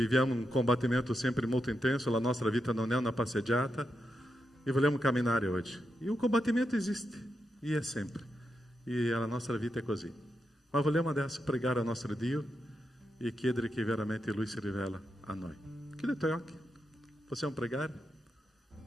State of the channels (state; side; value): normal; both; correlation 0.85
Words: un combattimento sempre molto intenso, la nostra vita non è una passeggiata, e vogliamo camminare oggi. E o combattimento esiste, e è sempre. E a nostra vita è così. Ma vogliamo adesso pregare al nostro Dio e chiedere che veramente Lui si rivela a noi. Chiudi i tuoi occhi. Possiamo pregare?